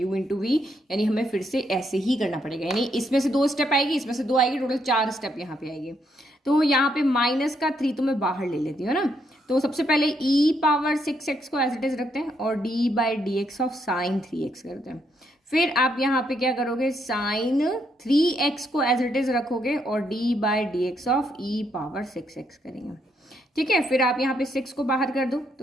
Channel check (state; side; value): normal; both; correlation 0.75